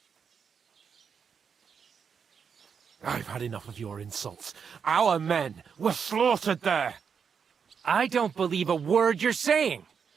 I've had enough of your insults. Our men were slaughtered there. I don't believe a word you're saying.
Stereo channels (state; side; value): quieter; left; 6.6 dB